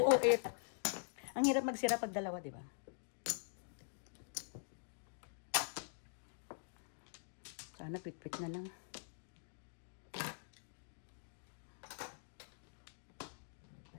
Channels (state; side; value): silent; right; digital silence